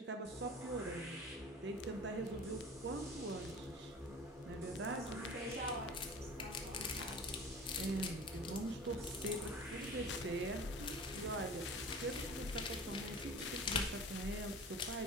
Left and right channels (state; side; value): normal; both; correlation 0.40